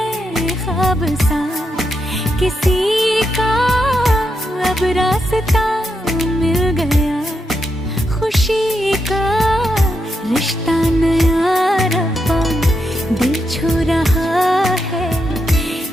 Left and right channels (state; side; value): normal; both; correlation 0.83